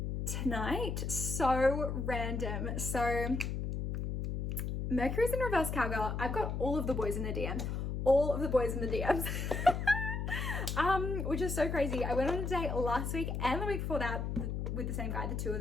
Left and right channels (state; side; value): noise; left; hum, 2 dB below the sound